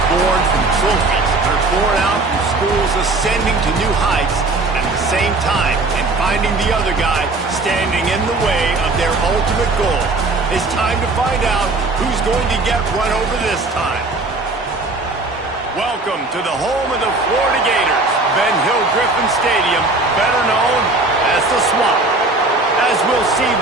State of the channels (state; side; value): quieter; left; 3.2 dB